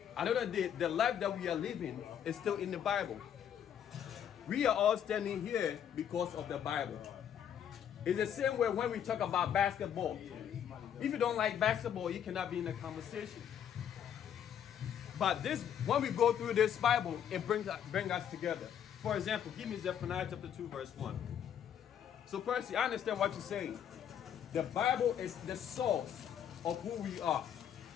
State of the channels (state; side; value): quieter; right; 9.2 dB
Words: Another day, the life that we are living is still in the Bible. We are all standing here because of the Bible. It's the same way when we talk about basketball. If you don't like basketball, you cannot be in the conversation. But this, when we go through this Bible, it brings us together. For example, give me Zephaniah chapter 2, verse 1. So Percy, I understand what you're saying. The Bible is the source of who we are.